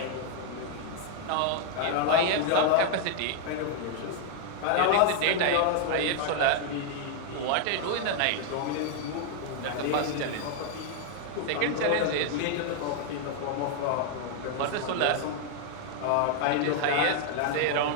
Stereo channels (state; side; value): different; both; correlation 0.00